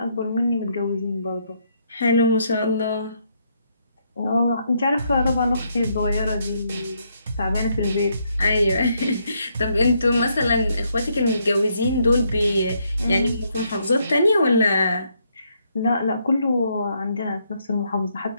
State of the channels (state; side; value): inverted; both; correlation -0.74